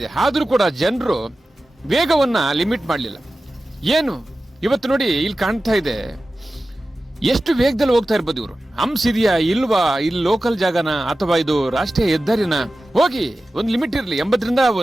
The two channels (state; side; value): normal; both; correlation 0.95